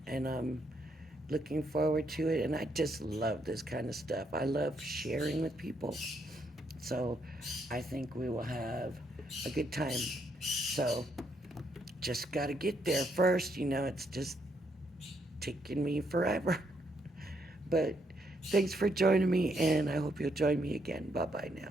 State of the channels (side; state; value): both; normal; correlation 0.75